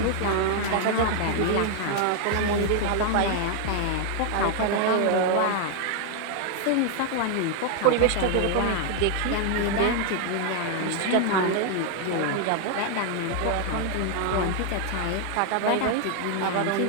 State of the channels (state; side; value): different; both; correlation 0.00